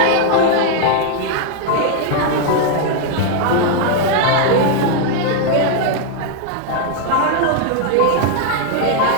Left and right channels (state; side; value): different; both; correlation 0.00